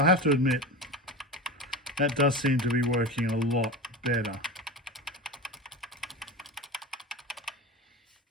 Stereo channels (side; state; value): both; normal; correlation 0.27